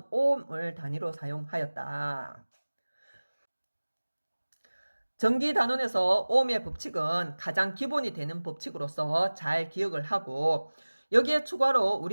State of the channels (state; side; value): inverted; both; correlation -1.00